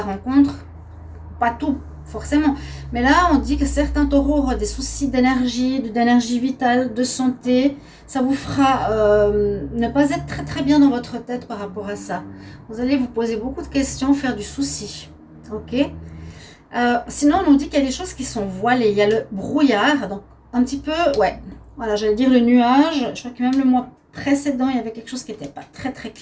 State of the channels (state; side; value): identical; both; correlation 1.00